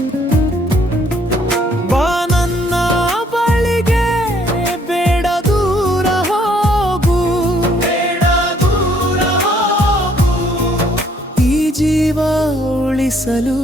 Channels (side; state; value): both; normal; correlation 0.65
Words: ಬಾ ನನ್ನ ಬಳಿಗೆ, ಬೇಡ ದೂರ ಹೋಗು, ಬೇಡ ದೂರ ಹೋಗು. ಈ ಜೀವ ಉಳಿಸಲು